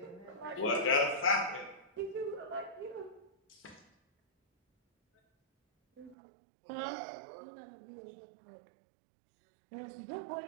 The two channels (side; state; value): left; drops out; at 6.2 s